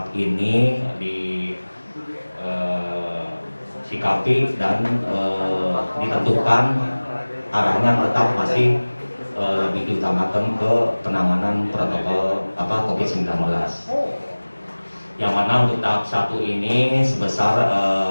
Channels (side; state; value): both; inverted; correlation -1.00